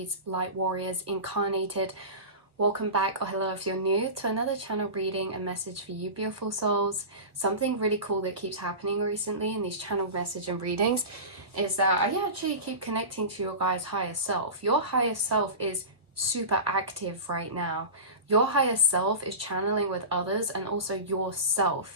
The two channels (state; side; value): late; left; 1.2 ms